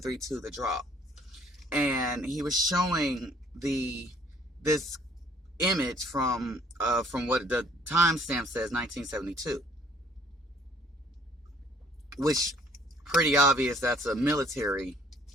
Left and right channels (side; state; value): both; normal; correlation 0.60